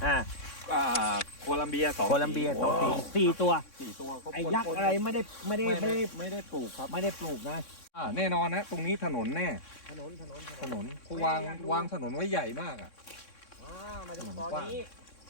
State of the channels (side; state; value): right; late; 3.6 ms